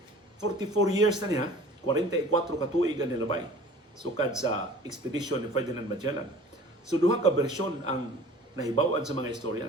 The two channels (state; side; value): normal; both; correlation 0.46